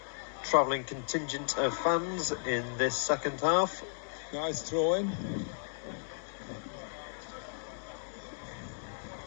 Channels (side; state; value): right; silent; digital silence